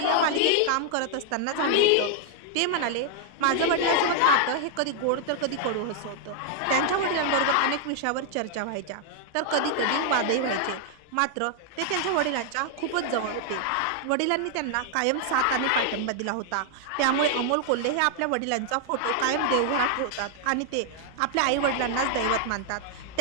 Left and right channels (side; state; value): both; different; correlation 0.00